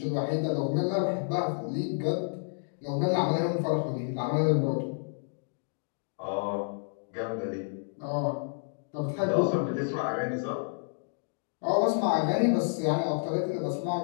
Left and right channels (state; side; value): silent; right; digital silence